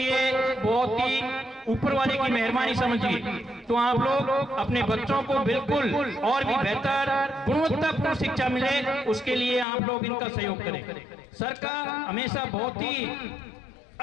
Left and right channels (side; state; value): right; drops out; at 9.7 s